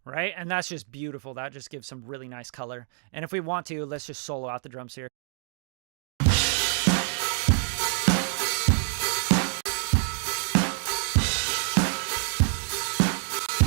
Right? And that's just beautiful. That just gives some really nice color. And if we want to, let's just solo out the drums here.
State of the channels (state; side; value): silent; left; digital silence